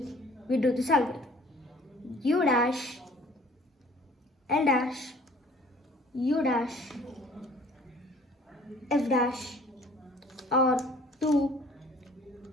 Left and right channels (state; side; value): normal; both; correlation 0.53